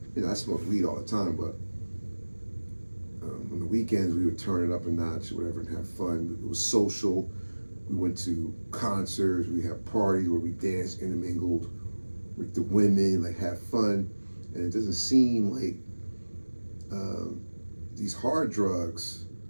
I smoked weed all the time, but on the weekends we would turn it up a notch or whatever and have fun. It was social. We went to concerts. We had parties where we danced, intermingled with the women, like had fun. And it doesn't seem like these hard drugs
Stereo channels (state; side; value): inverted; both; correlation -1.00